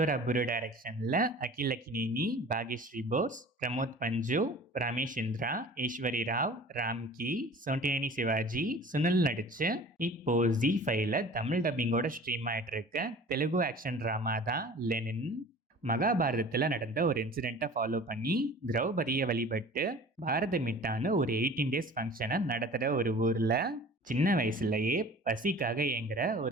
அப்புரு டைரக்ஷனில் அகில் அக்கினேனி, பாக்யஸ்ரீ போஸ், பிரமோத் பஞ்சு, ரமேஷ் இந்திரா, ஈஸ்வரி ராவ், ராம்கி, சோண்டினேனி சிவாஜி, சுனில் நடிச்சு இப்போ Z5ல தமிழ் டப்பிங்கோட ஸ்ட்ரீம் ஆயிட்டு இருக்க தெலுங்கு ஆக்ஷன் ட்ராமா தான் லெனின். மகாபாரதத்தில் நடந்த ஒரு இன்சிடெண்ட்டை ஃபாலோ பண்ணி திரௌபதியை வழிபட்டு பாரத மிட்டான்னு ஒரு 18 days ஃபங்க்ஷனை நடத்துகிற ஒரு ஊரில் சின்ன வயசுலயே பசிக்காக ஏங்குற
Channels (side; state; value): both; normal; correlation 0.43